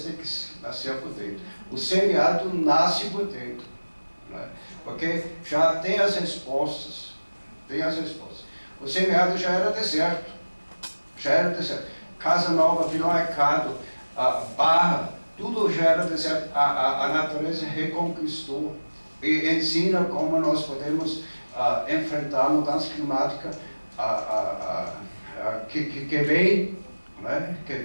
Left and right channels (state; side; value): inverted; both; correlation -1.00